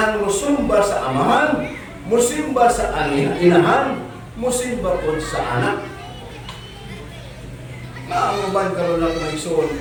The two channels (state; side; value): identical; both; correlation 1.00